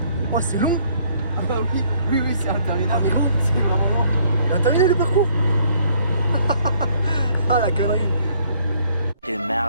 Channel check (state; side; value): inverted; both; correlation -0.63